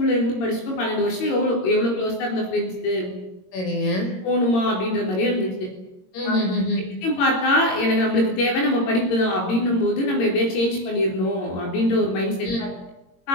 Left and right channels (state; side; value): late; right; 22 ms